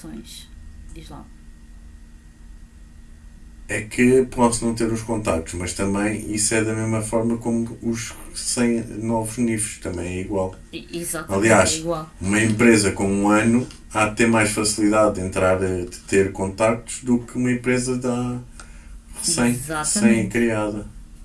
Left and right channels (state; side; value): identical; both; correlation 1.00